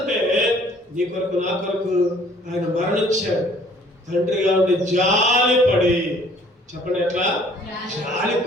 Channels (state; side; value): normal; both; correlation 0.57